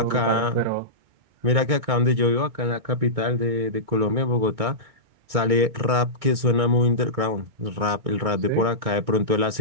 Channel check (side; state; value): left; late; 2.2 ms